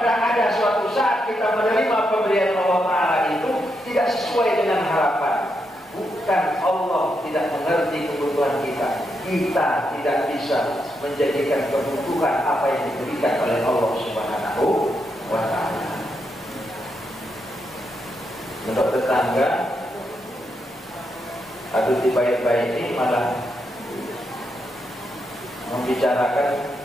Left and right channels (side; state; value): both; normal; correlation 0.82